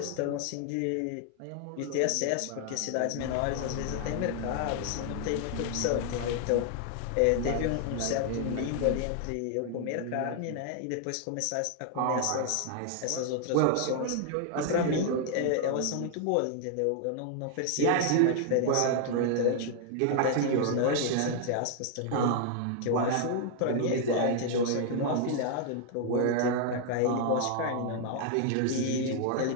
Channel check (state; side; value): different; both; correlation 0.00